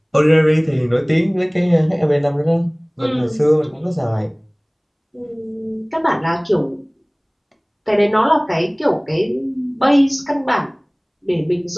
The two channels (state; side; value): identical; both; correlation 1.00